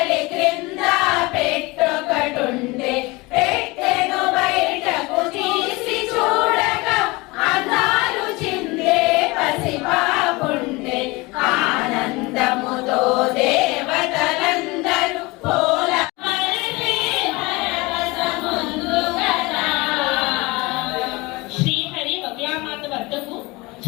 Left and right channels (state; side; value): quieter; right; 23.7 dB